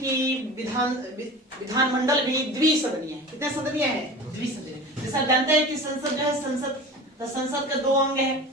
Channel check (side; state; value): both; normal; correlation 0.35